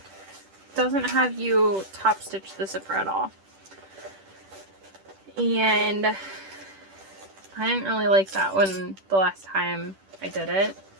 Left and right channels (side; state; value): left; late; 10 ms